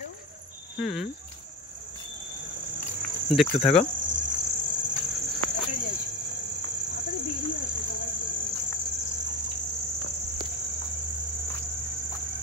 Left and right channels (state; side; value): normal; both; correlation 0.25